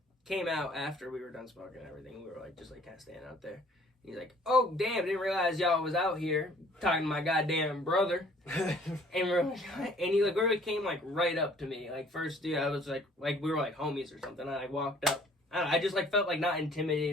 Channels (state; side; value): normal; both; correlation 0.56